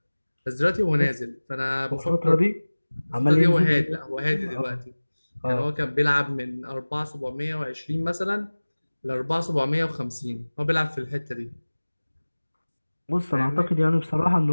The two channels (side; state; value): both; inverted; correlation -1.00